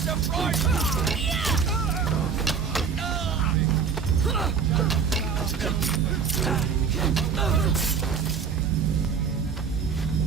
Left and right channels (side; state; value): left; quieter; 6.3 dB